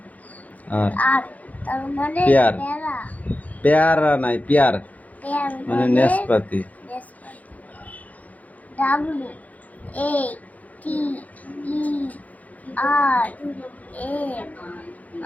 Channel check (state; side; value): late; right; 0.075 ms